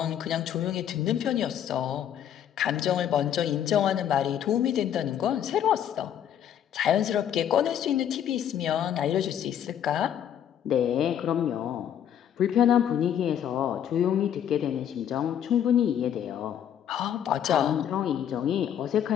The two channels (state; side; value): quieter; right; 9.8 dB